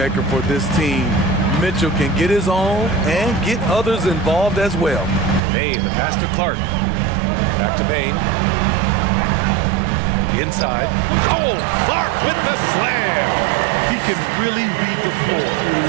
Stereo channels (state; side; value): drops out; left; at 5.4 s